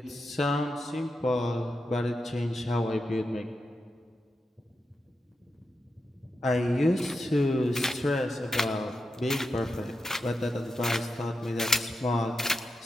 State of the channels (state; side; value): normal; both; correlation 0.87